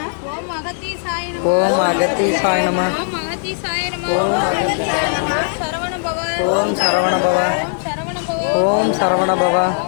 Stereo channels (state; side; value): silent; right; digital silence